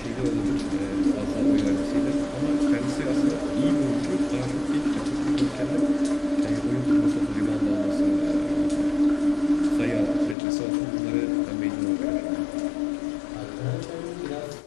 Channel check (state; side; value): drops out; right; at 10.4 s